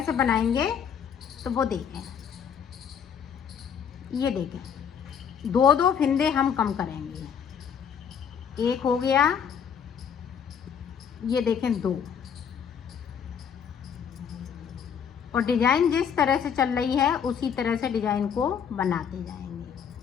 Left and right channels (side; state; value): right; quieter; 7.6 dB